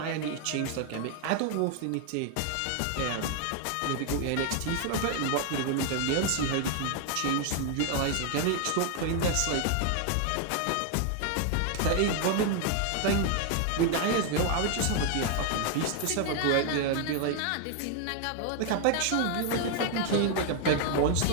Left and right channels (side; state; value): both; different; correlation 0.00